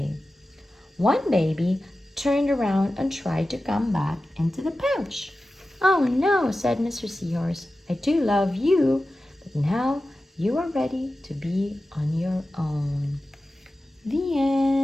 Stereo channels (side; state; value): both; normal; correlation 0.94